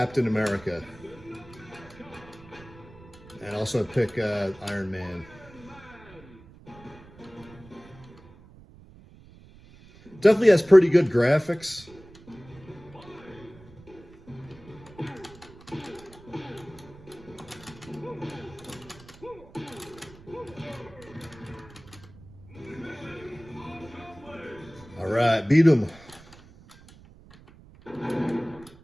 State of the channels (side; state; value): right; noise; rumble, 22 dB below the sound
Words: America. And also pick Iron Man. Definitely has pretty good graphics. All right, beat him.